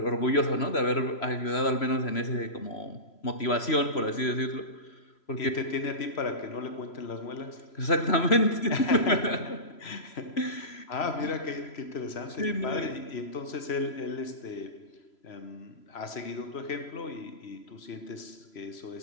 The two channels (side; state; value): right; late; 3.0 ms